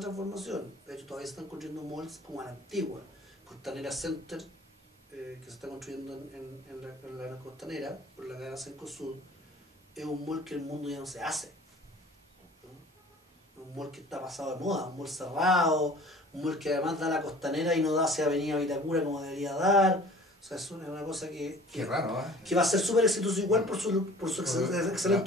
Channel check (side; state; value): both; normal; correlation 0.47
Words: De hecho, todavía se están construyendo malls como a la antigua. Costanera Center, que se está construyendo en la costanera, por la cadena Cencosud, es un mall que el mundo ya no se hace. ¿No? Un mall que está pasado de moda, un mall cerrado, un mall que además da la costanera y no da hacia Avenida Vitacura como debería dar. O sea, es una cosa que raro, que va a ser súper exitoso igual por su